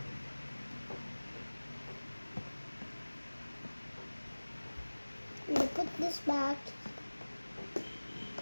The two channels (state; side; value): inverted; both; correlation -1.00